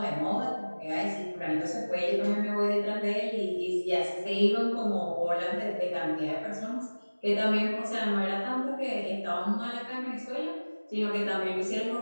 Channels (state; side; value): inverted; both; correlation -1.00